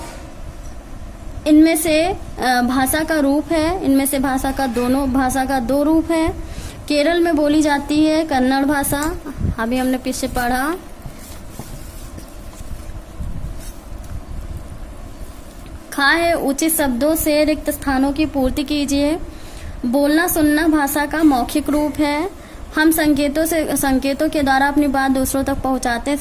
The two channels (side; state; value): both; identical; correlation 1.00